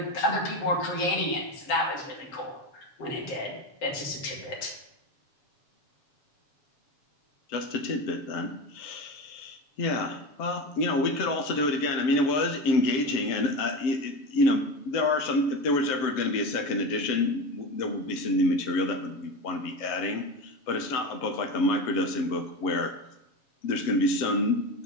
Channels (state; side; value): late; right; 7.1 ms